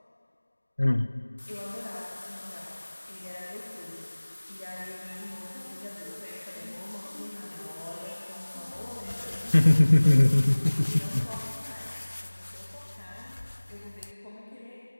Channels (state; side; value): inverted; both; correlation -1.00